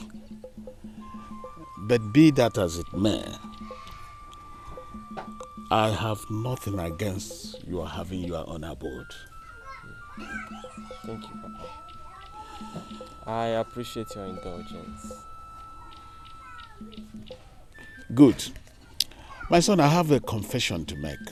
But be that as it may, I have nothing against your having your own abode. Thank you, Papa. I appreciate your indulgence. Good. My son, I have a confession to make.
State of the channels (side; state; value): both; identical; correlation 1.00